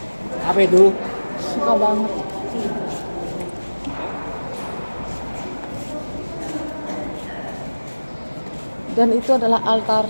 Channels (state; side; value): inverted; both; correlation -1.00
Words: Apa itu? Suka banget. Dan itu adalah